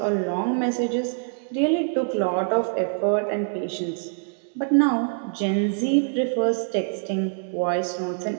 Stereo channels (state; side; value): silent; left; digital silence